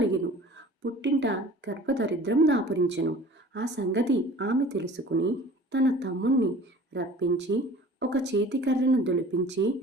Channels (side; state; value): both; normal; correlation 0.46